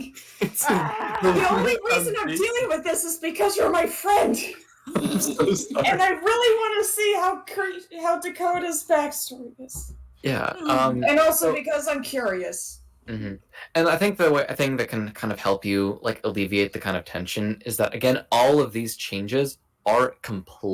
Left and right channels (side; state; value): both; identical; correlation 1.00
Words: The only reason I'm dealing with this is because you're my friend. I'm so sorry. And I really want to see how Dakota's backstory is. Yeah. And also so- because I'm curious. Mhm. And I think I think that can kind of help you like alleviate the kind of tension is that again, all of these changes are